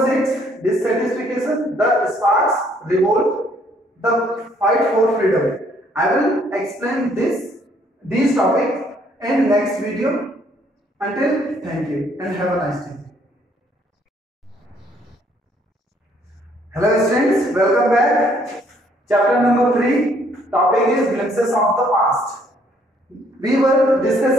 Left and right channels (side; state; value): both; normal; correlation 0.65